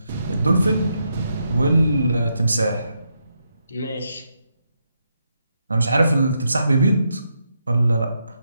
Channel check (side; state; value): both; inverted; correlation -0.81